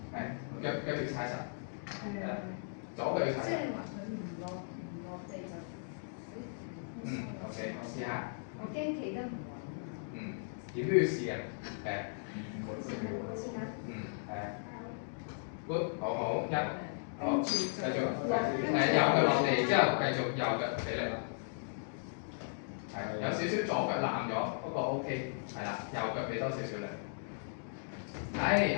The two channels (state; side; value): silent; right; digital silence